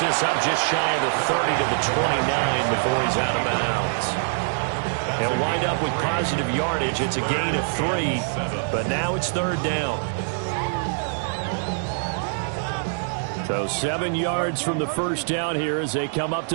up just shy of the 30 to the 29 before he's out of bounds. He'll wind up with positive yardage. It's a gain of 3, but now it's 3rd down. So 7 yards from the first down here as they come up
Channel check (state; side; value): silent; left; digital silence